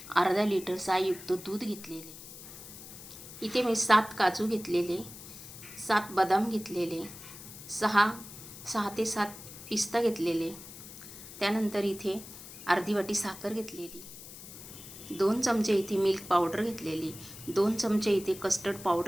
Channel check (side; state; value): left; noise; hiss, 14 dB below the sound